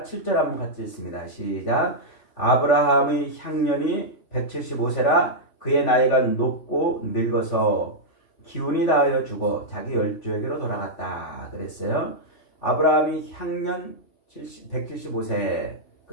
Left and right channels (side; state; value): right; late; 3.0 ms